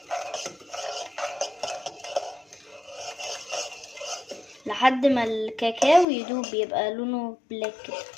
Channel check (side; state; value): right; drops out; at 6.1 s